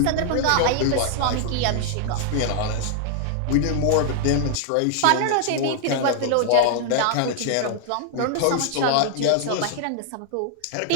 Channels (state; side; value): different; both; correlation 0.00